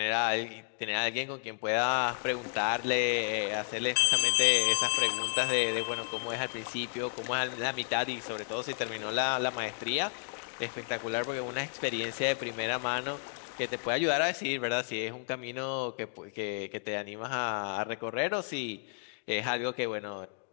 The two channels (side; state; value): right; silent; digital silence